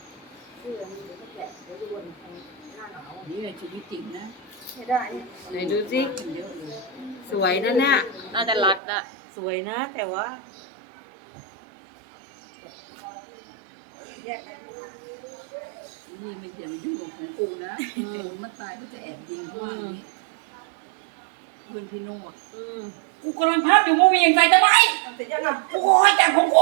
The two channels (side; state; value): left; drops out; at 8.8 s